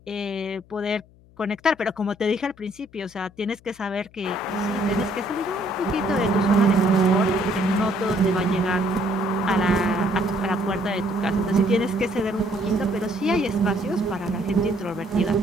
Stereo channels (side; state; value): left; noise; hum, 27 dB below the sound